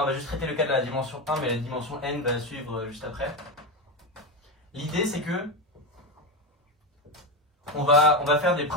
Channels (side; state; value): both; normal; correlation 0.15